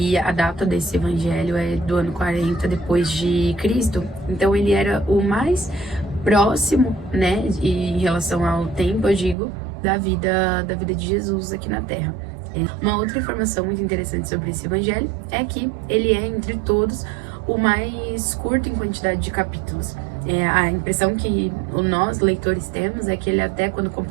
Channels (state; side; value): drops out; left; at 9.3 s